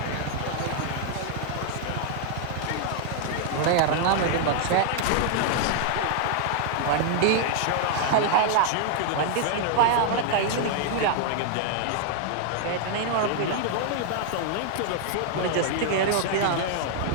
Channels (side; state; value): both; different; correlation 0.00